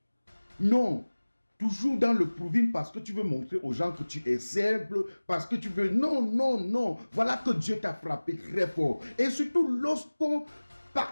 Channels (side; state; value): both; inverted; correlation -1.00